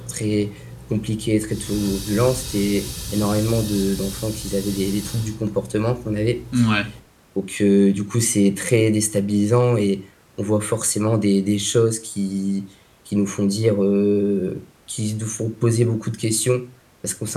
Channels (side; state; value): both; identical; correlation 1.00